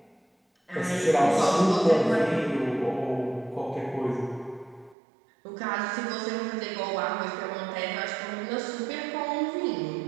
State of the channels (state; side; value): drops out; left; at 5.0 s